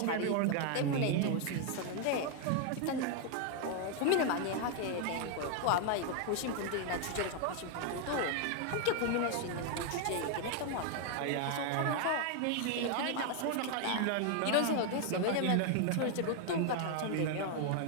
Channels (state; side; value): different; both; correlation 0.00